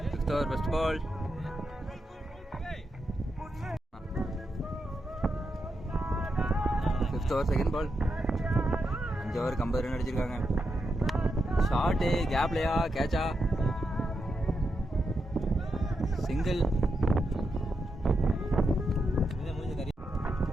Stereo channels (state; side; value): normal; both; correlation 0.85